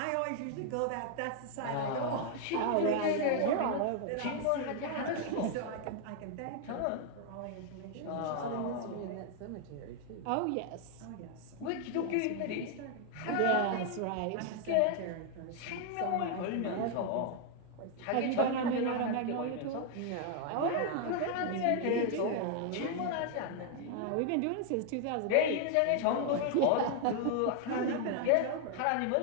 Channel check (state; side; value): different; both; correlation 0.00